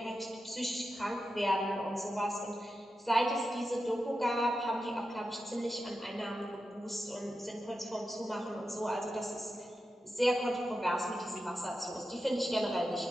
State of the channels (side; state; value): both; normal; correlation 0.90